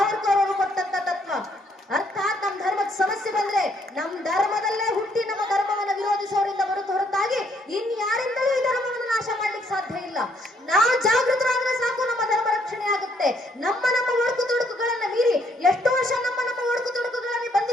ಅವರು ಕೊಟ್ಟಂತ ತತ್ವ. ಅರ್ಥಾತ್ ನಮ್ ಧರ್ಮದ ಸಮಸ್ಯೆ ಬಂದ್ರೆ ನಮ್ ಧರ್ಮದಲ್ಲೇ ಹುಟ್ಟಿ ನಮ್ಮ ಧರ್ಮವನ್ನ ವಿರೋಧಿಸೋರಿಂದ ಹೊರತಾಗಿ ಇನ್ಯಾರಿಂದಲೂ ಈ ಧರ್ಮವನ್ನು ನಾಶ ಮಾಡ್ಲಿಕ್ಕೆ ಸಾಧ್ಯ ಇಲ್ಲ. ನಾವು ಜಾಗೃತರಾದ್ರೆ ಸಾಕು, ನಮ್ಮ ಧರ್ಮ ರಕ್ಷಣೆ ಆಗುತ್ತೆ. ನಮ್ಮ ಒಡಕು ತೊಡಕುಗಳನ್ನ ಮೀರಿ ಎಷ್ಟೋ ವರ್ಷ ನಮ್ಮ ಒಡಕು ತೊಡಕುಗಳಲ್ಲಿ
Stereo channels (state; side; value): normal; both; correlation 0.69